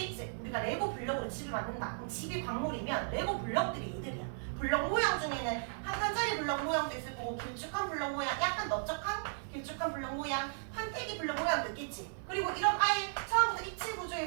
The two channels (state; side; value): silent; left; 54 dB below the other